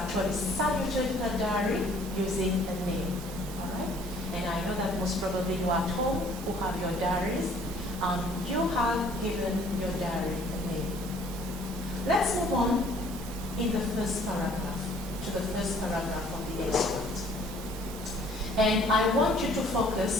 saluted her diary using a name, all right? And I know that most probably you at home who have your diaries, you have given your diary a name. Let's move on in the first paragraph, to the first paragraph of the extract. And I want you to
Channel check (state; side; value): normal; both; correlation 0.57